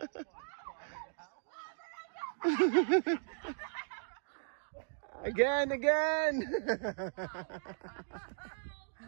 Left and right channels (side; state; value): left; silent; digital silence